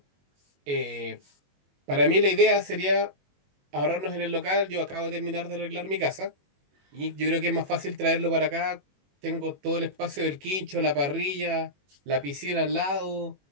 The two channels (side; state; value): left; late; 21 ms